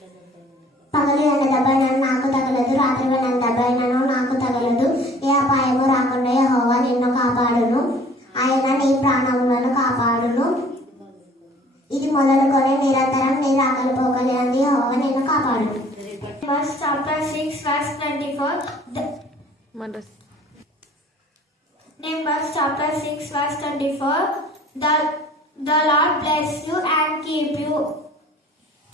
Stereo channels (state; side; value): normal; both; correlation 0.53